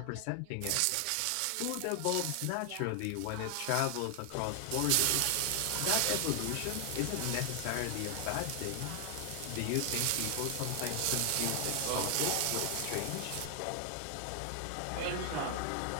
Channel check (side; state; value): both; different; correlation 0.00